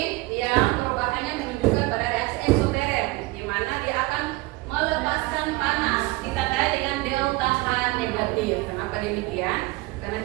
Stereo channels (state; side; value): quieter; left; 21.7 dB